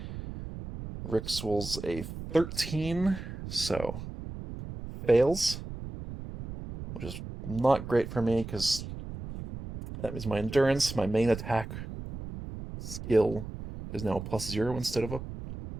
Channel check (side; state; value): right; noise; rumble, 10 dB below the sound